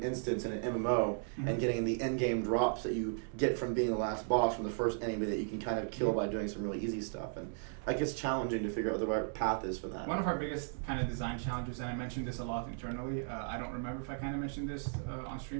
instance in an MMO and getting the end game drops that you get from being the last boss from the first enemy that you can kind of kill by doing some really easy stuff. And like it's challenging to figure out the right path is for that. One of our biggest kind of design challenges, and I mentioned this a lot internally, I don't remember if I kind of mentioned this on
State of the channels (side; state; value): left; silent; digital silence